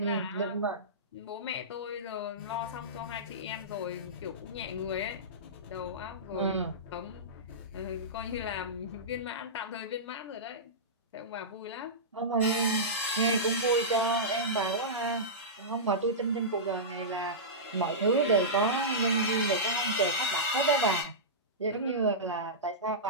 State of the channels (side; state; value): both; normal; correlation -0.16